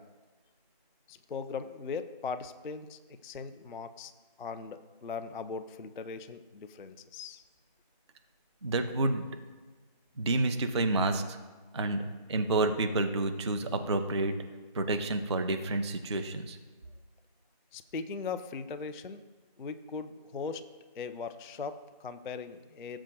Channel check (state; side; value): inverted; both; correlation -0.43